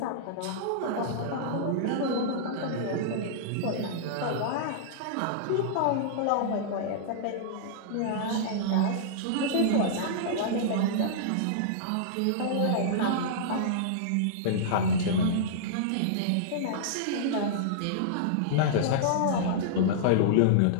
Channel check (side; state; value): both; different; correlation -0.02